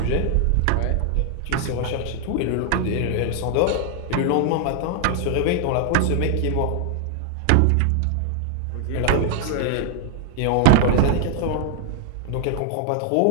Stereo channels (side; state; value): both; different; correlation 0.00